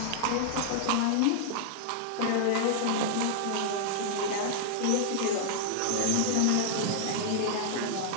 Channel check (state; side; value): different; both; correlation -0.01